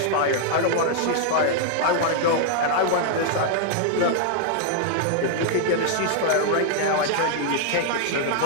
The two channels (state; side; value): different; both; correlation -0.01